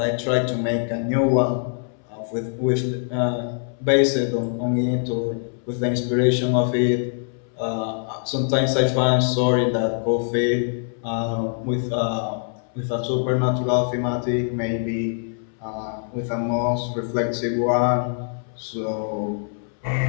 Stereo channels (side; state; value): right; silent; 63 dB below the other